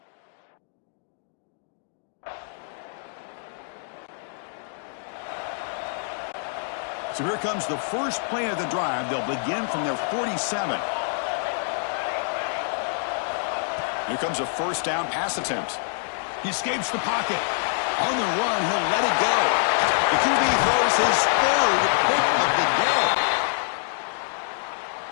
So here comes the first play of the drive. They'll begin from their 47. Here comes a first down pass attempt. He escapes the pocket. On the run, he'll let it go. The QB throws his third pick of the day.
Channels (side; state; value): right; silent; digital silence